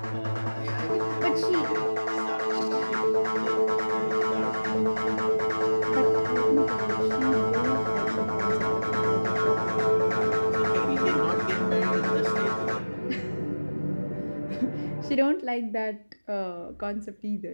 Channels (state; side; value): inverted; both; correlation -1.00